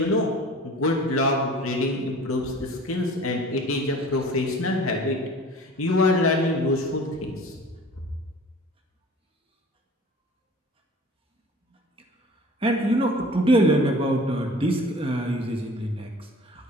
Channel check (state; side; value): normal; both; correlation 0.44